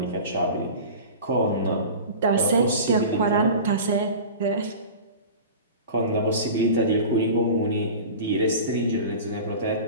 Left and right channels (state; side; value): inverted; both; correlation -0.35